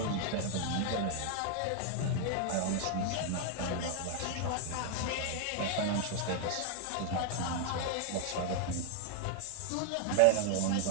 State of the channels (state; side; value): different; both; correlation 0.00